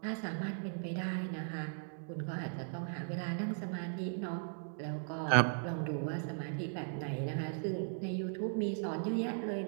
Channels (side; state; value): left; silent; digital silence